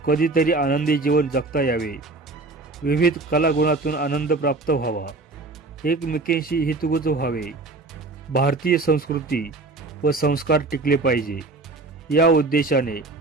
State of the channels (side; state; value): left; quieter; 3.3 dB